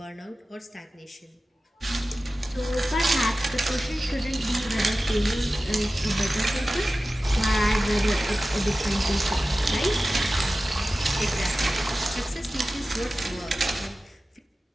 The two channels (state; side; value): normal; both; correlation 0.95